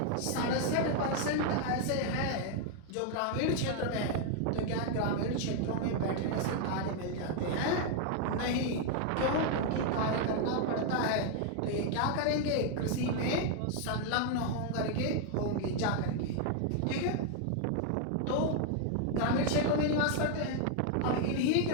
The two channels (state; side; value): different; both; correlation 0.00